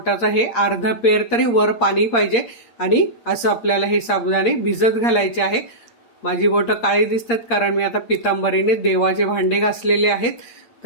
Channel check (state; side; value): late; right; 8.6 ms